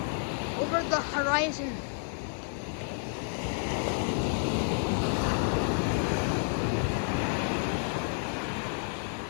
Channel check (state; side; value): silent; right; 58 dB below the other